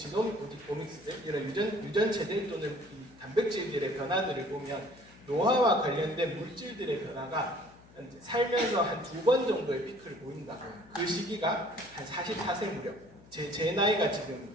오믹스들, 이런 유전체들 또는 단백질들의 변화들을 보면 노화와 관련된 물질들의 변화가 살면서 한 2번 정도의 피크를 보인다고. 그 시기가 한 44세 무렵. 제 나이가 지금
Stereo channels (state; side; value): noise; left; hum, 24 dB below the sound